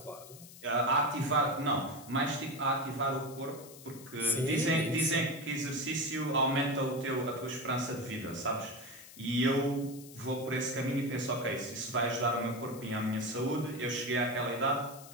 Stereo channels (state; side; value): noise; left; hiss, 18 dB below the sound